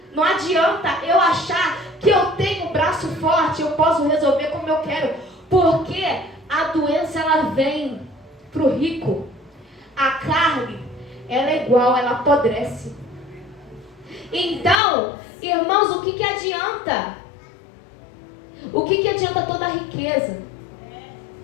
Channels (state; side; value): drops out; right; at 14.8 s